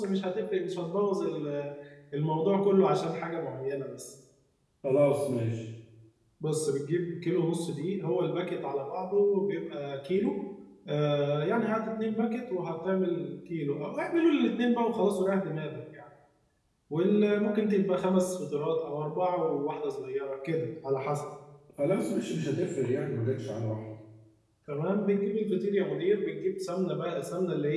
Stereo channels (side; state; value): both; identical; correlation 1.00